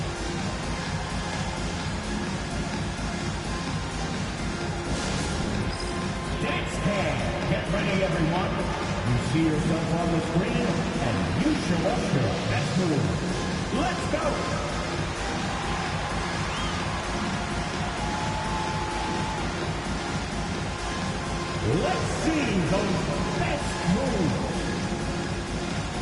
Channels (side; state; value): both; identical; correlation 1.00